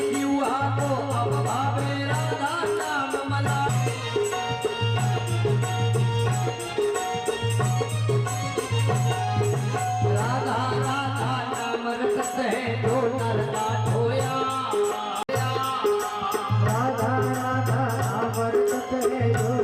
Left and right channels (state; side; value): identical; both; correlation 1.00